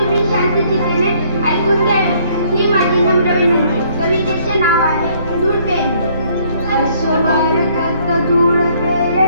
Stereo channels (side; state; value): both; inverted; correlation -0.64